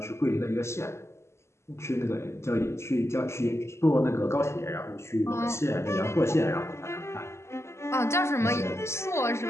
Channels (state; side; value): late; right; 0.13 ms